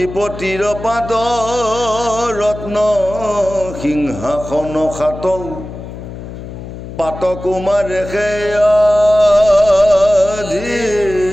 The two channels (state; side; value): noise; left; hum, 11 dB below the sound